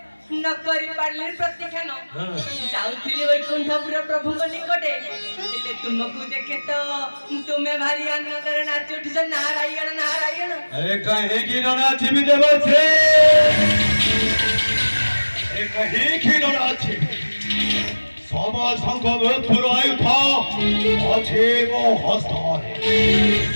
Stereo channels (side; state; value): both; inverted; correlation -1.00